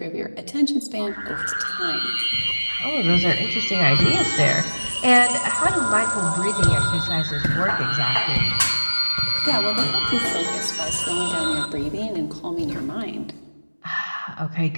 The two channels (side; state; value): both; inverted; correlation -1.00